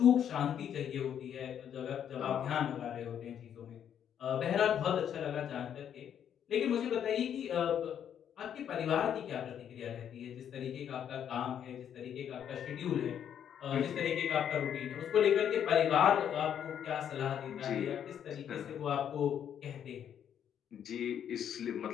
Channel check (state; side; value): quieter; right; 9.1 dB